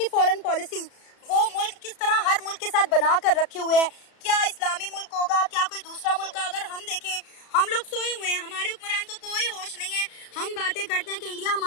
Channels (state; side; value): late; right; 33 ms